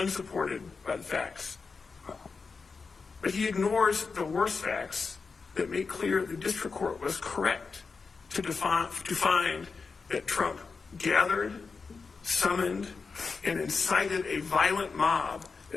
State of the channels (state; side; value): quieter; right; 4.8 dB